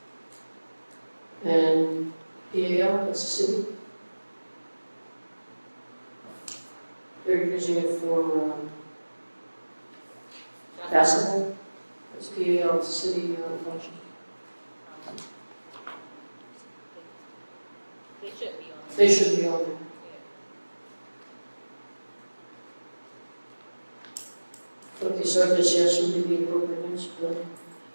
And PAL, that's the city. They're using it for basketball. That's PAL, it's a city function. They should be on. They should be on there. Okay, so I guess yes would be the appropriate answer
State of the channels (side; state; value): both; inverted; correlation -1.00